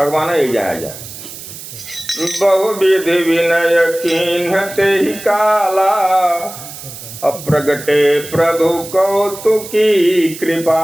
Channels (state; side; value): noise; right; hiss, 13 dB below the sound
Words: ही जाया जाए। बहुविधि विनय कीन्हते ही काला, अप्रगटे प्रभु कौतुकी